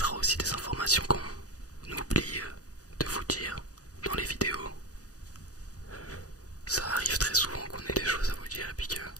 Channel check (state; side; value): late; right; 0.67 ms